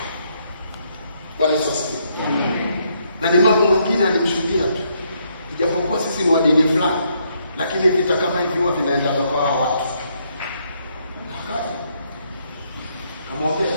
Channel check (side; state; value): both; inverted; correlation -0.73